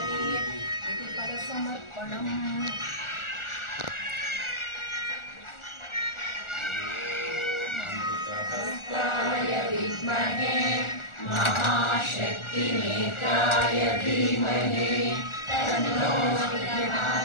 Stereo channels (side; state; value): right; late; 1.4 ms